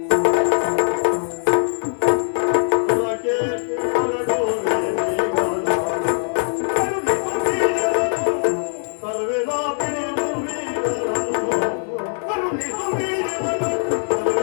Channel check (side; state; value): right; silent; 65 dB below the other